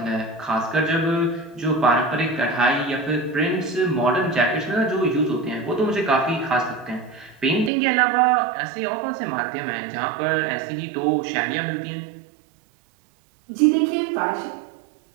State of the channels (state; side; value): drops out; left; at 7.7 s